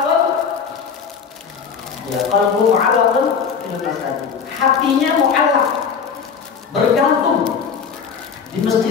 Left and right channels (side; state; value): right; quieter; 6.4 dB